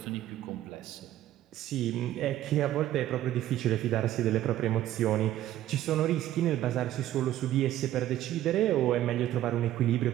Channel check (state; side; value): quieter; left; 13.2 dB